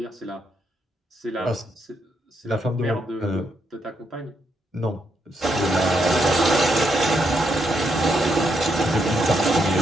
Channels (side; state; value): both; normal; correlation 0.79